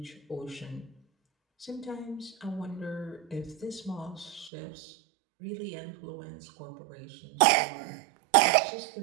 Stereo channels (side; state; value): left; drops out; at 4.5 s